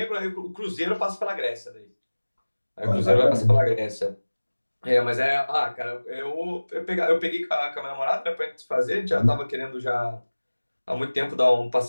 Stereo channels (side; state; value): both; inverted; correlation -1.00